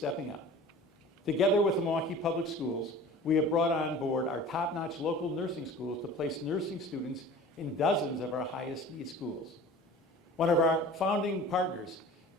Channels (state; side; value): normal; both; correlation 0.42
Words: up. Together with the Milwaukee Public Schools, we have brought on board our top-notch local nursing schools to place nursing students in dozens of our highest need schools. One of our founding partners,